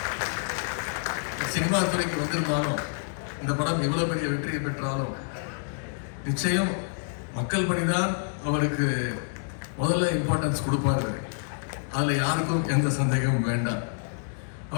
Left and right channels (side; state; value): right; silent; digital silence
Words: சினிமா துறைக்கு வந்திருந்தாலும், இந்த படம் எவ்வளவு பெரிய வெற்றியை பெற்றாலும் நிச்சயம் மக்கள் பணிதான் அவருக்கு முதல்ல இம்பார்ட்டன்ஸ் கொடுப்பாரு. அதுல யாருக்கும் எந்த சந்தேகமும் வேண்டாம்.